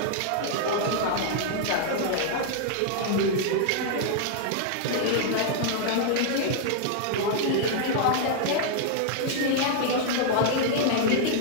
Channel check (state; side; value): different; both; correlation -0.01